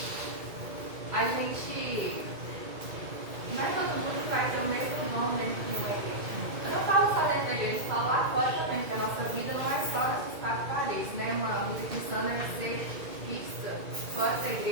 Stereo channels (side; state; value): left; late; 2.3 ms